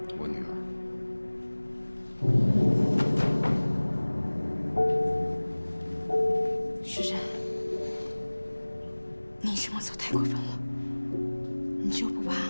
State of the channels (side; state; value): both; inverted; correlation -1.00